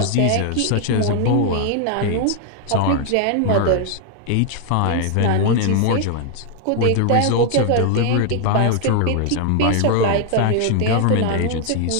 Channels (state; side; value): different; both; correlation 0.00